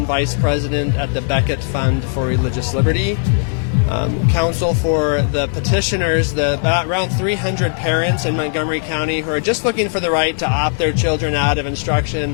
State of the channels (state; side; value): silent; right; 60 dB below the other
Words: Vice President at the Beckett Fund for Religious Liberty. Counsel for the petitioners, around 300 parents in Montgomery County who are just looking for the right to opt their children out of